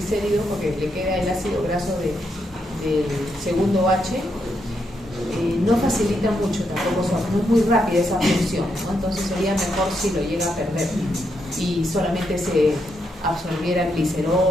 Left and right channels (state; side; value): normal; both; correlation 0.80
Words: porque le queda el ácido graso del segundo H, no facilita mucho tampoco, no es muy rápida esa función, ¿no? Entonces sería mejor si lo llega a perder y solamente se absorbiera